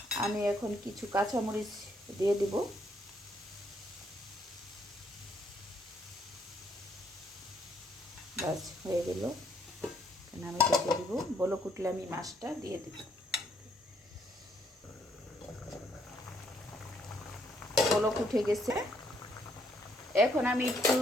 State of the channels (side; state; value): both; normal; correlation 0.70